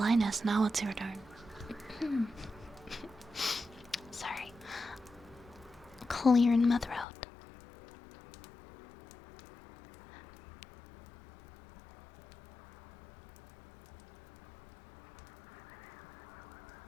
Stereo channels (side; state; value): right; drops out; at 7.1 s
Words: now it's your turn. Sorry. Clearing my throat.